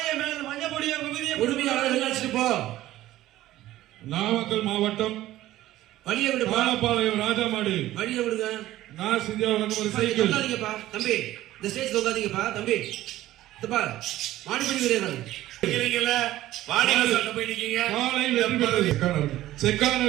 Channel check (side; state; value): left; quieter; 15.0 dB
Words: மேல மஞ்சள் பொடிய உரிமையாளர் வெளில அடிச்சுட்டு போ. நாமக்கல் மாவட்டம் வழியை விடு. பாலப்பாளையம் ராஜாமாடு வழியை விடுங்க. நான் செஞ்ச ஒரு சைக்கிள் தொங்காதீங்கப்பா தம்பி. இந்த ஸ்டேஜ் தொங்காதீங்கப்பா தம்பி. இதுப்பா மாடிப்படி கிடையாது.